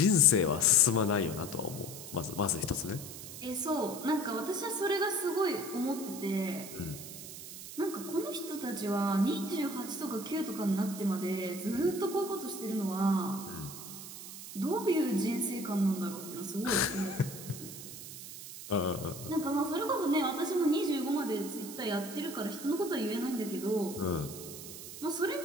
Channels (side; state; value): right; noise; hiss, 11 dB below the sound